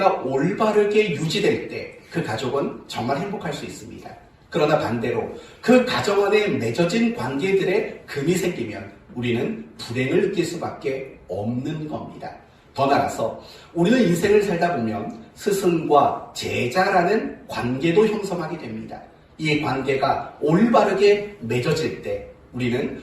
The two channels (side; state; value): both; identical; correlation 1.00